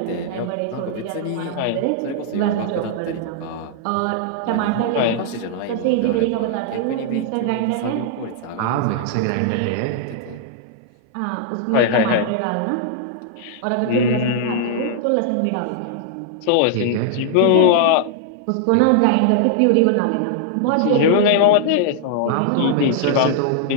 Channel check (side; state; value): both; different; correlation -0.01